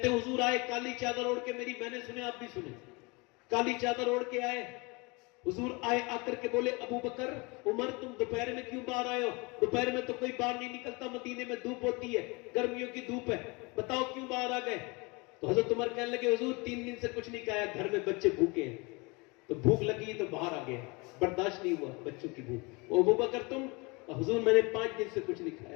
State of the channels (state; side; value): quieter; right; 27.4 dB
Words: ہیں حضور آئے کالی چادر اوڑھ کے، میری بہنیں سنے آپ بھی سنے، کالی چادر اوڑھ کے آئے، حضور آئے، آ کر کے بولے ابو بکر عمر تم دوپہر میں کیوں باہر آئے ہو؟ دوپہر میں تو کوئی باہر نہیں نکلتا، مدینے میں دھوپ ہوتی ہے، گرمیوں کی دھوپ ہے، بتاؤ کیوں باہر آ گئے؟ تو حضرت عمر کہنے لگے حضور 3 دن سے کچھ نہیں کھایا، گھر میں بچے بھوکے ہیں، تو بھوک لگی تو باہر آ گئے، برداشت نہیں ہوا بچوں کی بھوک۔ ابو بکر تم؟ حضور میں نے 5 دن سے کچھ نہیں